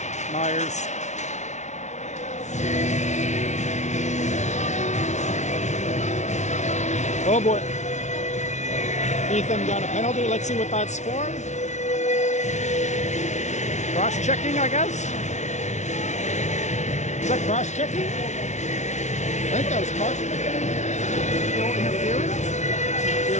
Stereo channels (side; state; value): right; late; 0.33 ms